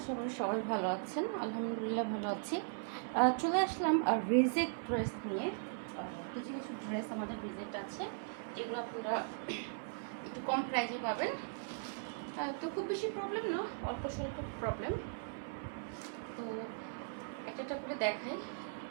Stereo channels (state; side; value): silent; left; 52 dB below the other